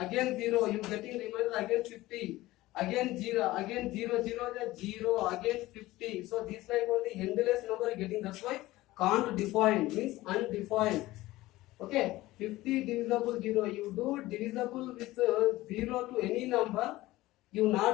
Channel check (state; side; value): quieter; right; 17.8 dB